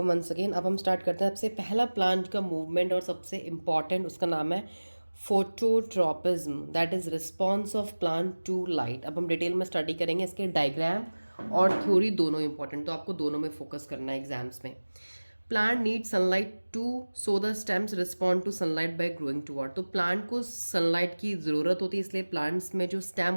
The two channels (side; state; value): both; inverted; correlation -1.00